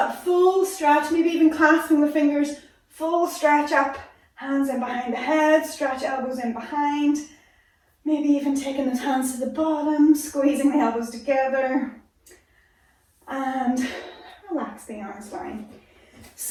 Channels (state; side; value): identical; both; correlation 1.00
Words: full stretch, maybe even clasping the fingers, full stretch up, hands in behind the head, stretch elbows in behind, maybe even taking those hands to the bottom, squeezing the elbows together, and relax the arms down.